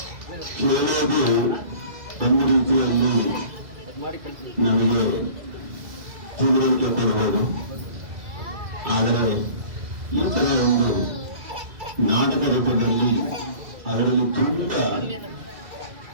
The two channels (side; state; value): left; late; 2.3 ms